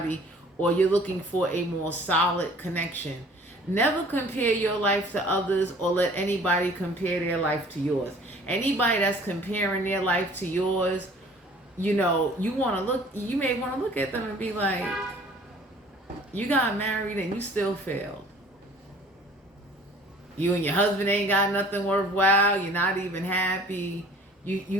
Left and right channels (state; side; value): normal; both; correlation 0.51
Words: or you're looking for a more solid connection. Never compare your life to others, or let anybody compare their life to yours. Anybody that's comparing their life to yours, you know, you may want to look at them and be like, you got married and you still failed. You and your husband ain't got nothing worthwhile. You're not even happy.